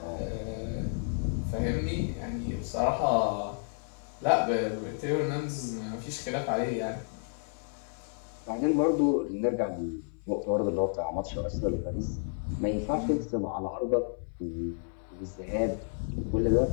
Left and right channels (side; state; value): right; silent; 57 dB below the other